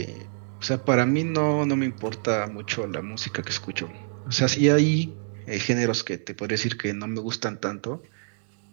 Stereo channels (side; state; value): left; silent; digital silence